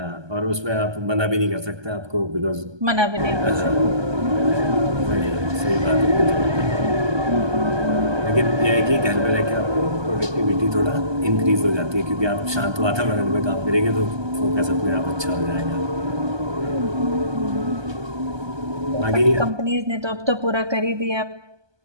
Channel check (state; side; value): late; left; 1.2 ms